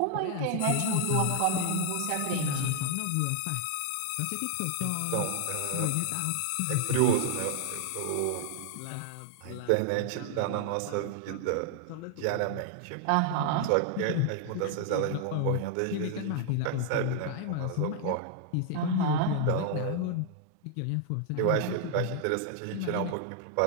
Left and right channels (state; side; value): different; both; correlation 0.00